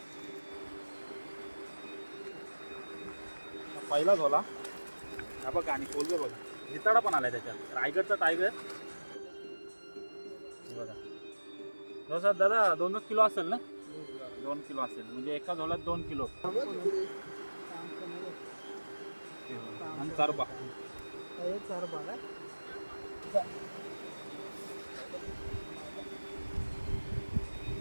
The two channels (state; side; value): inverted; both; correlation -1.00